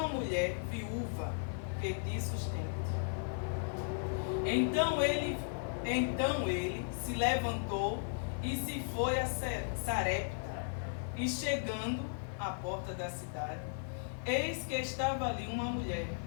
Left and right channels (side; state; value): right; silent; digital silence